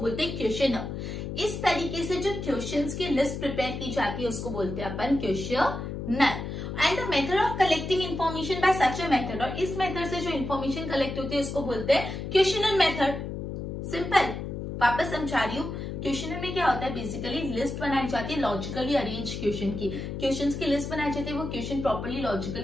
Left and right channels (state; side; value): noise; left; hum, 6 dB below the sound